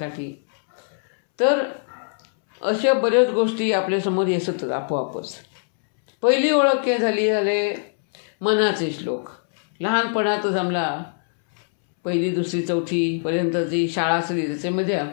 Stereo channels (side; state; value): right; silent; 64 dB below the other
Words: तर अशा बऱ्याच गोष्टी आपल्यासमोर येतात आपोआपच। पहिली ओळख झाले मनाचे श्लोक। लहानपणातच आम्हाला 1ली, 2री, 4थी पर्यंत जी शाळा असली त्याच्यामध्ये